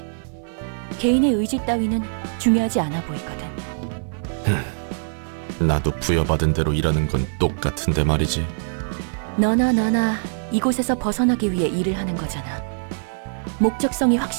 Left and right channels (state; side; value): silent; left; 56 dB below the other